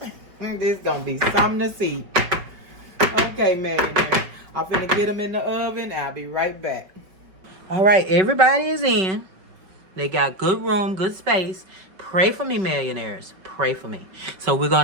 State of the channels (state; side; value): late; left; 5.3 ms